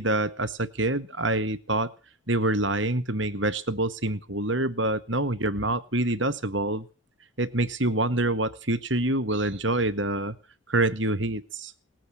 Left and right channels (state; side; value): normal; both; correlation 0.19